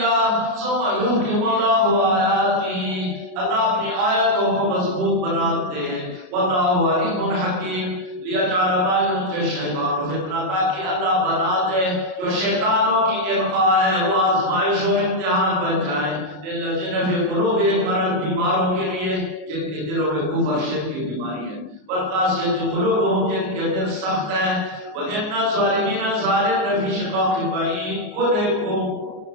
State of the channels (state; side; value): late; left; 33 ms